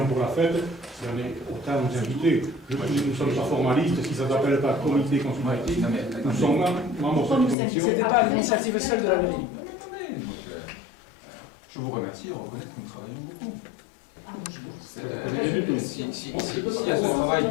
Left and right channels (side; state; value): right; drops out; at 7.6 s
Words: pour la fête, si on est autant nous inviter. Nous ne sommes pas formalistes, si ça ne s'appelle pas comité consultatif, nous sommes membres de cette commission. Ce n'était pas l'initiative seule de la mairie. Je vous remercie de reconnaître que nous travaillons beaucoup. Si à ce travail,